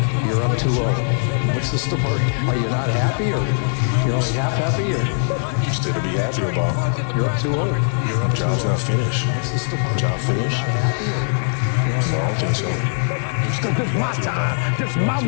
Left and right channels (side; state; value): right; silent; digital silence